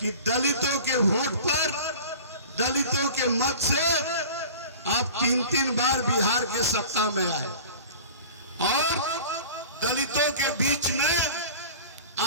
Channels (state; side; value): inverted; both; correlation -0.39